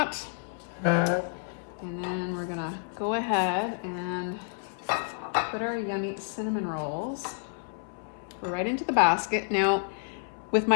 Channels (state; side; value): silent; right; 58 dB below the other